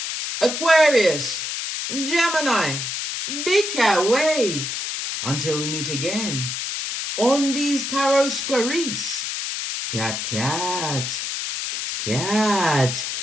Aquarius, Gemini, Big Cat Wave. Until we meet again on these tarot streets. Cat, cat, cat,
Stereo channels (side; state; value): left; noise; hiss, 3 dB below the sound